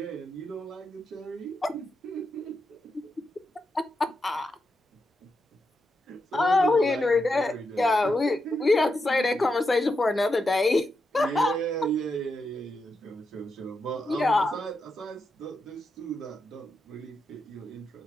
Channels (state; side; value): normal; both; correlation 0.85